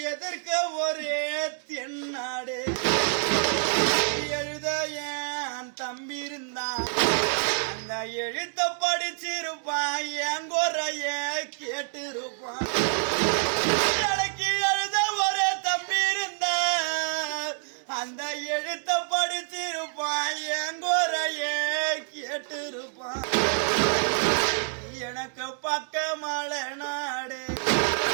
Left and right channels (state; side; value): silent; left; 56 dB below the other